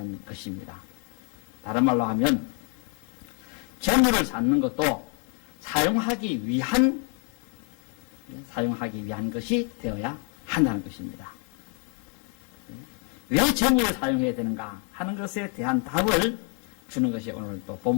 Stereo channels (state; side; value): quieter; right; 36.6 dB